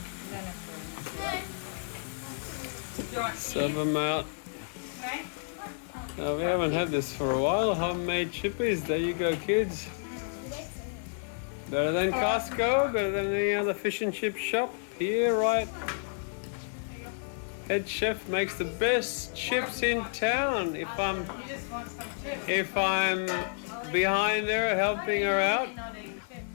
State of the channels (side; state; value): right; silent; 57 dB below the other